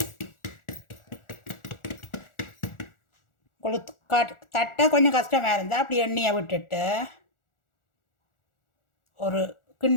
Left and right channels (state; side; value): late; right; 1.4 ms